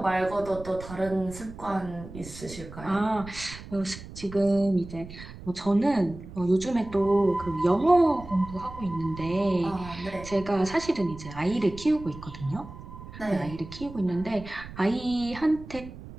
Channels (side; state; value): right; noise; rumble, 14 dB below the sound